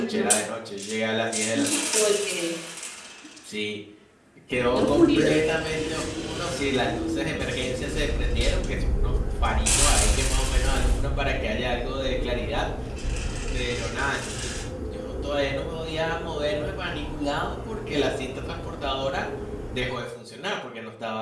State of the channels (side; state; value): both; identical; correlation 1.00